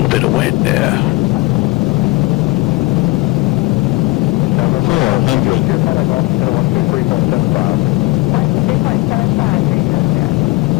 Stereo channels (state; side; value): quieter; right; 22.9 dB